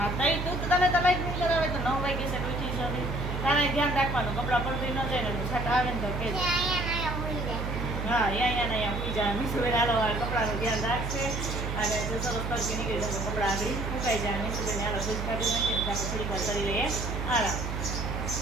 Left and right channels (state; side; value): noise; right; hum, 3 dB below the sound